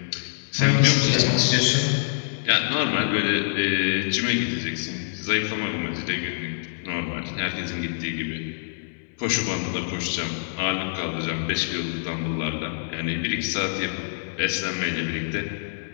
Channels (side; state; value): right; silent; 61 dB below the other